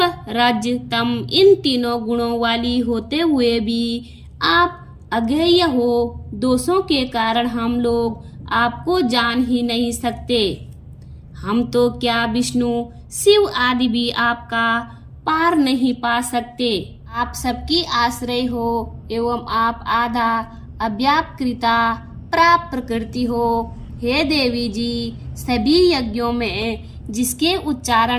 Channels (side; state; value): both; identical; correlation 1.00